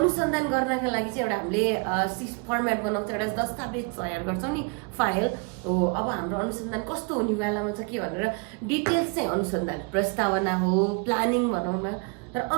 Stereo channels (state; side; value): quieter; left; 34.4 dB